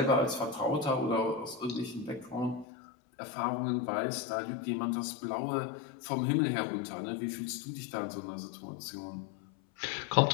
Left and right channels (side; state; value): right; drops out; at 2.7 s